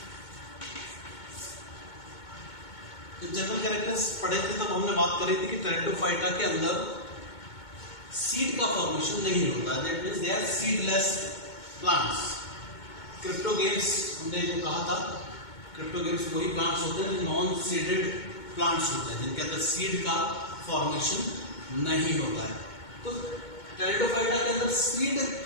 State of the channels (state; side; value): late; right; 2.2 ms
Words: जब जनरल कैरेक्टर्स पढ़े थे तब हमने बात करी थी कि टेरिडोफाइटा के अंदर सीड का फॉर्मेशन नहीं होता, that means they are seedless plants. Cryptogams हमने जो कहा था, क्रिप्टोगेम्स वही प्लांट्स होते हैं जो नॉन सीडेड प्लांट्स होते हैं, जिनके अंदर सीड का फॉर्मेशन नहीं होता है। तो टेरिडोफाइटा के अंदर सीड